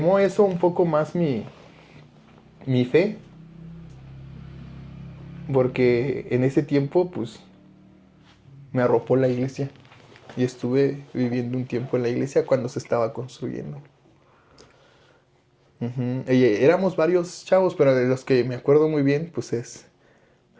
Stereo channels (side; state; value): both; identical; correlation 1.00